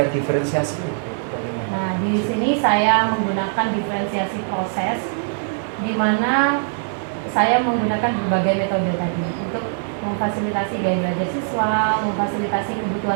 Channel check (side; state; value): left; silent; 58 dB below the other